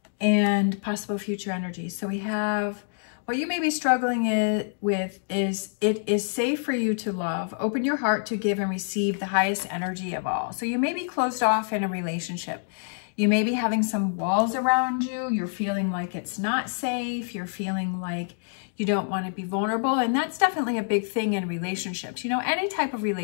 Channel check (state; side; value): silent; right; digital silence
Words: and possible future energies. So we have what you may be struggling with is it is safe for you to love. Open your heart to give and receive the highest energy of all. So you may be closed off in a relationship. You may be having some walls around you. You're feeling like it's not safe. You're feeling like you don't want to be vulnerable. And that's definitely a big thing in relationships. You know, any type of